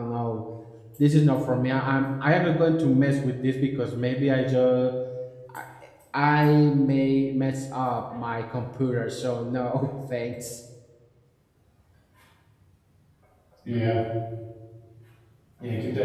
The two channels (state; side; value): identical; both; correlation 1.00